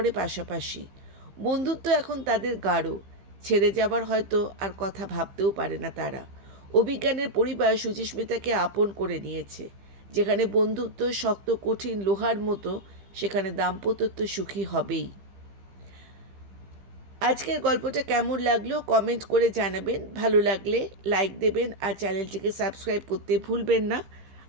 পাশাপাশি। বন্ধুত্ব এখন তাদের গাঢ়, ছেড়ে যাবার হয়তো আর কথা ভাবতেও পারে না তারা। অভিজ্ঞানের পরিবার সুচিস্মিতাকে আপন করে নিয়েছে। যেখানে বন্ধুত্ব শক্ত কঠিন লোহার মতো, সেখানে দাম্পত্য সুখী হবেই। আজকের গল্পটা কেমন লাগলো কমেন্ট করে জানাবেন। ভালো লাগলে লাইক দেবেন, আর চ্যানেলটিকে সাবস্ক্রাইব করতে ভুলবেন না,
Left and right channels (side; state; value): left; late; 15 ms